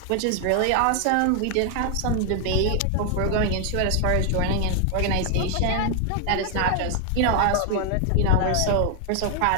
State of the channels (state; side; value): different; both; correlation 0.00